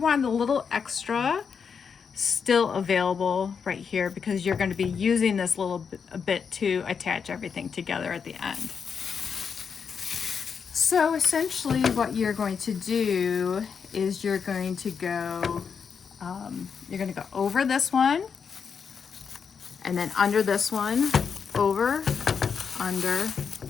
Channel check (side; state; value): right; quieter; 6.4 dB